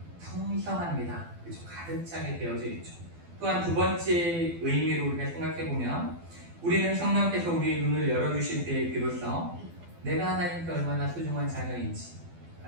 풍성합니다. 그렇죠? 가득 차게 되어져 있죠. 또한 두 번째 의미로 우리가 생각해 보면, 우리는 성령께서 우리의 눈을 열어주실 때에 비로소 내가 하나님께 얼마나 소중한 자녀인지,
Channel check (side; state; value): left; late; 12 ms